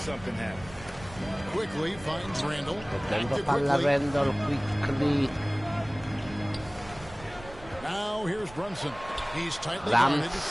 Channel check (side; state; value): right; noise; rumble, 18 dB below the sound